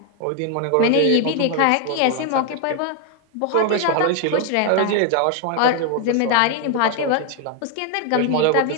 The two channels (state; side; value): different; both; correlation 0.00